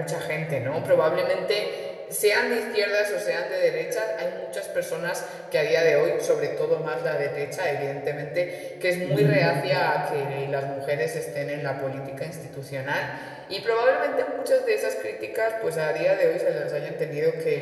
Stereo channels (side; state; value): both; identical; correlation 1.00